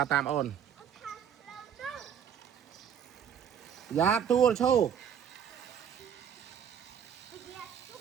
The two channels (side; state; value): left; quieter; 8.4 dB